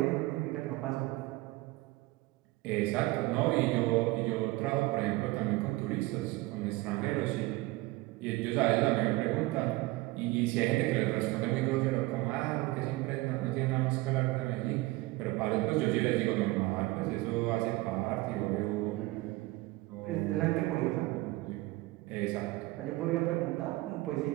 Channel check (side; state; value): left; quieter; 20.3 dB